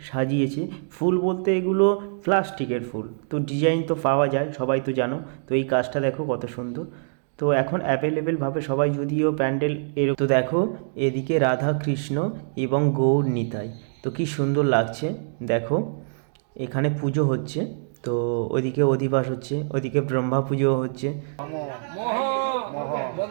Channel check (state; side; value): silent; left; digital silence